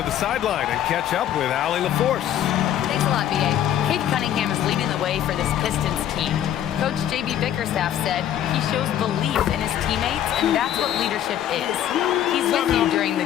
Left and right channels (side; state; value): right; quieter; 10.9 dB